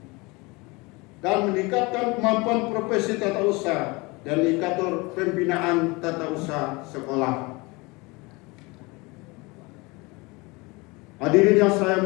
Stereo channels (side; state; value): right; quieter; 25.3 dB